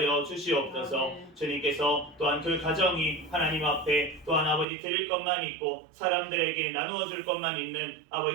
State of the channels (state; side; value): drops out; left; at 4.7 s